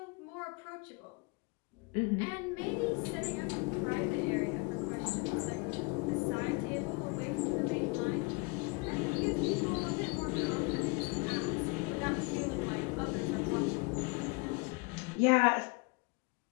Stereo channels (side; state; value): right; quieter; 29.0 dB